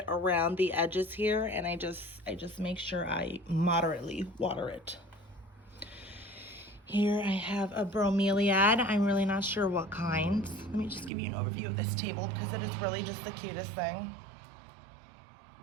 around the edges here, and I just make sure I moderately water it. Here I have a bromeliad. I'm really not sure what kind. Let me just give you an overview of this table because it is really just the cutest thing.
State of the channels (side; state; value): left; drops out; at 11.1 s